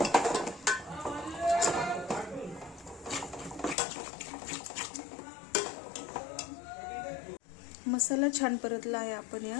मसाला छान परतला आहे। आपण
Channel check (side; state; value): right; drops out; at 3.8 s